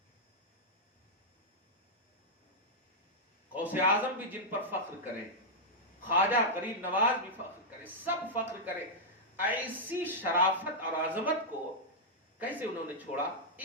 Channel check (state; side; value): normal; both; correlation -0.06